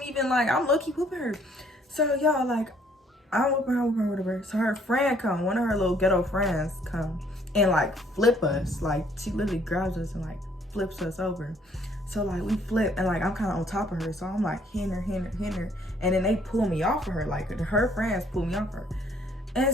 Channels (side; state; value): both; normal; correlation 0.63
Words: even like, I'm low-key whooping her. So y'all, like, I'm whooping her, whatever. So her friend come, one of her little ghetto friends come and like flip us. Like, she literally grabs us and like flips us over. So like we flip and like I'm kind of on top of her. So I'm like hitting her. And then they pull me off of her. Like her friends pull me off her. And